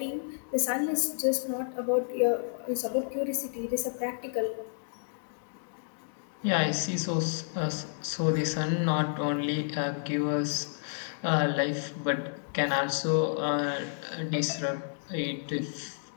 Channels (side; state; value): right; silent; digital silence